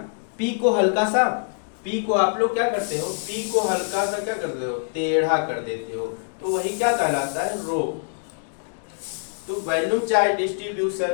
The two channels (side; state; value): right; silent; digital silence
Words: पी को हल्का सा, पी को आप लोग क्या करते हो, पी को हल्का सा क्या करते हो, टेढ़ा कर देते हो, तो वही क्या कहलाता है, रो। तो वॉल्यूम चार्ज